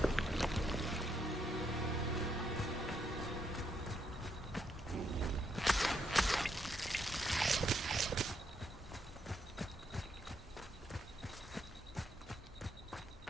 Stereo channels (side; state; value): both; normal; correlation 0.76